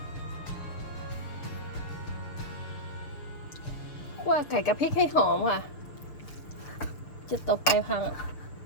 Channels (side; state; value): right; late; 6.8 ms